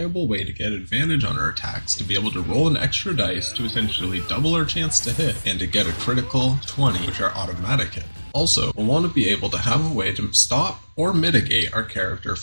way to get advantage on our attacks, to be able to roll an extra dice to essentially double our chance to hit, and to get a critical 20, which are automatic hit. Also, we'll want to be able to have a way to stop or mitigate our character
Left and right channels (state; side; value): inverted; both; correlation -1.00